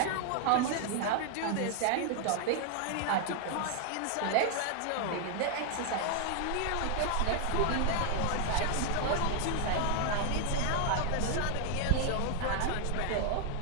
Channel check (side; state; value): both; different; correlation 0.00